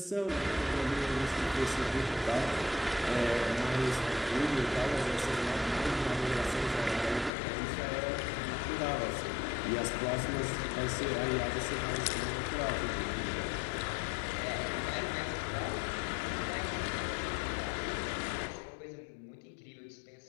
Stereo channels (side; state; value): right; drops out; at 7.3 s